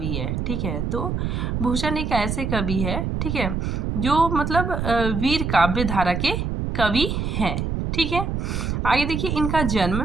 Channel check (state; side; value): noise; right; rumble, 1 dB below the sound